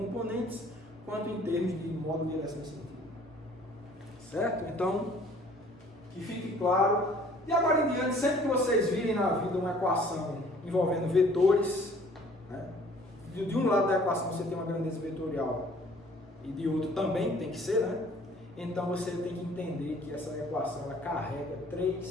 quanto em termos de modo, direção e sentido. Certo? Então, que fique claro. E agora em diante, sempre que vocês virem na vida uma equação envolvendo vetores, né? De um lado da equação você tem uma grandeza vetorial e de outro também tem que ser, né? Então você tem que entender que essa equação ela carrega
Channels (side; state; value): both; normal; correlation 0.55